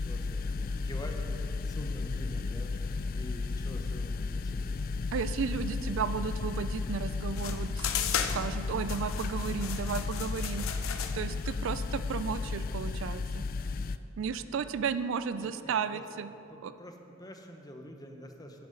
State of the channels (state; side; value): normal; both; correlation 0.48